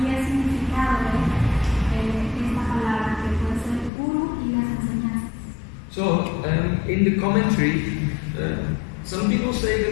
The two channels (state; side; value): drops out; right; at 3.9 s